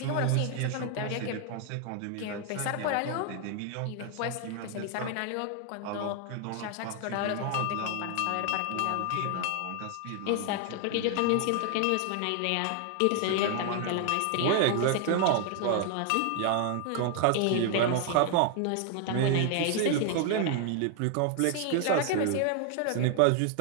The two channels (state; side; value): different; both; correlation 0.00